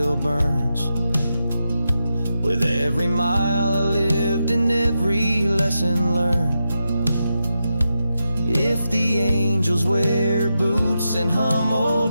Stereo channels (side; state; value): both; inverted; correlation -0.88